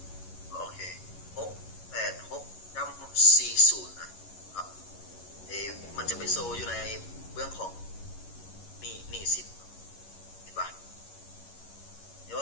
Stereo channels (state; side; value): late; right; 11 ms